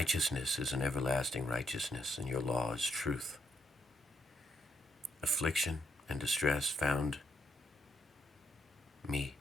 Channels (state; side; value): normal; both; correlation 0.76